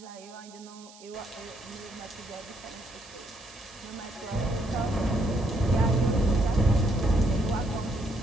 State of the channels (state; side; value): noise; right; hiss, 21 dB below the sound